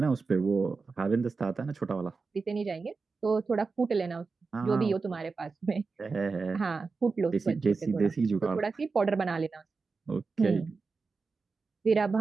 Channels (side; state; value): left; quieter; 4.4 dB